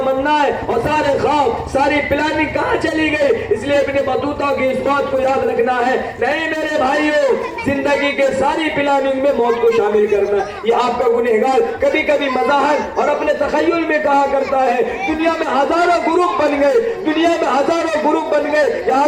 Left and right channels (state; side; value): identical; both; correlation 1.00